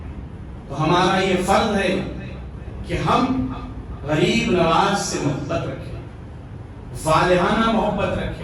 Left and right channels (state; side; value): identical; both; correlation 1.00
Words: تو ہمارا یہ فرض ہے کہ ہم غریب نواز سے محبت رکھیں، والہانہ محبت